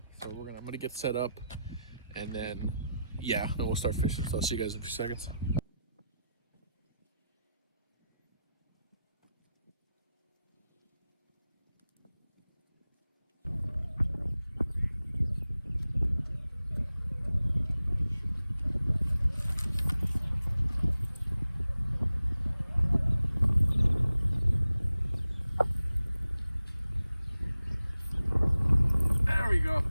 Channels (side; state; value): both; inverted; correlation -0.90